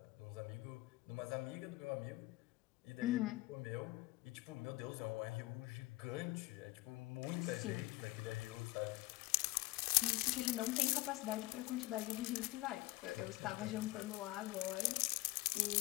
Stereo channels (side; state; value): right; quieter; 20.1 dB